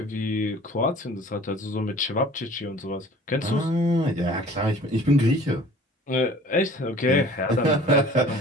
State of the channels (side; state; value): both; normal; correlation 0.48